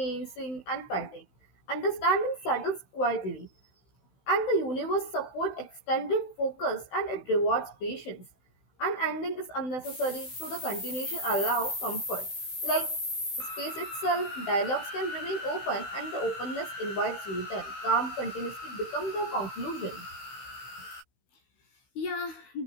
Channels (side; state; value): right; late; 16 ms